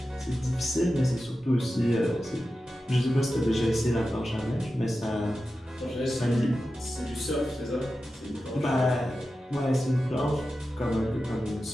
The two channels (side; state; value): both; normal; correlation 0.92